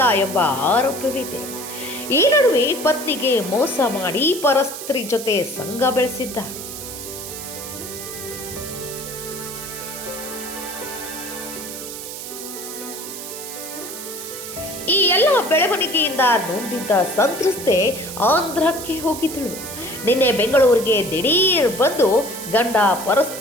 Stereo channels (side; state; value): right; noise; hiss, 9 dB below the sound